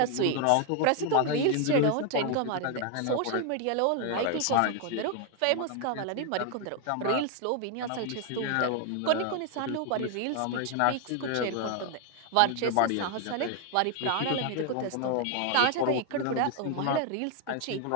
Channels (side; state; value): both; different; correlation 0.00